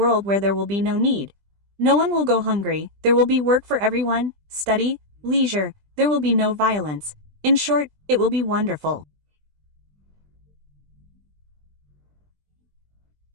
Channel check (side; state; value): left; late; 20 ms